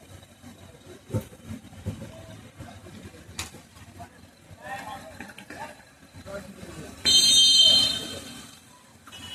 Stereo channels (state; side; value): identical; both; correlation 1.00